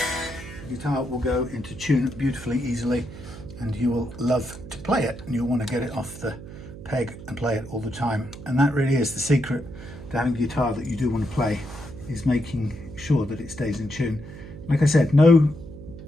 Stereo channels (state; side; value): noise; right; hum, 13 dB below the sound